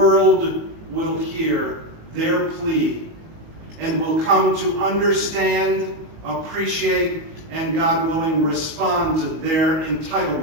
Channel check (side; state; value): left; late; 18 ms